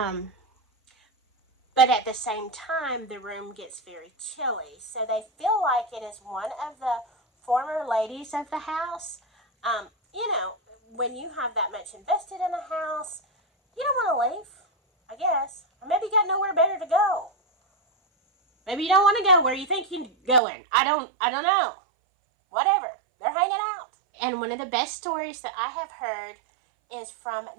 But at the same time, the room gets very chilly. So they feel like it is one of the former ladies of the house. You know, when you have that much invested in a house, you don't want to leave, I guess. Or maybe you got nowhere better to go. Maybe you don't want to go where you think you're going. I don't know. Whatever. They're hanging out. And one of the best stories that I have heard is from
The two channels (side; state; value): left; drops out; at 20.4 s